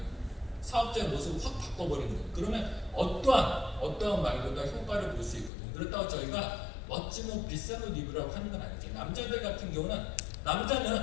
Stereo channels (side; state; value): right; drops out; at 5.5 s